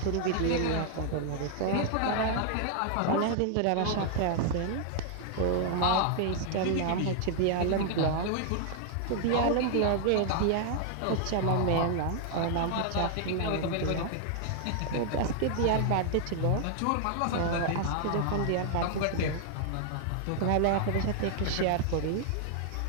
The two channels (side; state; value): both; different; correlation 0.00